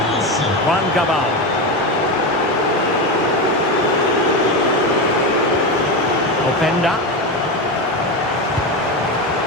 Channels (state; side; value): normal; both; correlation 0.17